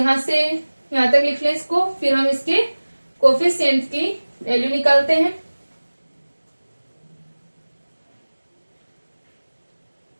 से यहां तक लिख लें इसको, फिर हम इसके कोफिशिएंट की वैल्यू निकालते हैं।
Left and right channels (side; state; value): both; inverted; correlation -1.00